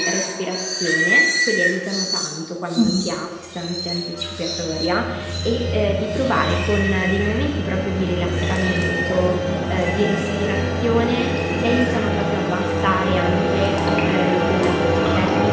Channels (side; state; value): both; identical; correlation 1.00